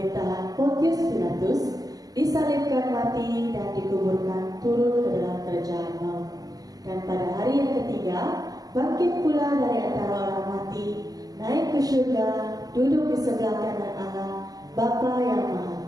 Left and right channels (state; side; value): late; left; 0.18 ms